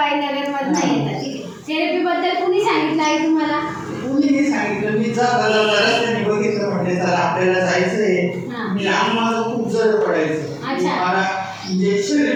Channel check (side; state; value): both; identical; correlation 1.00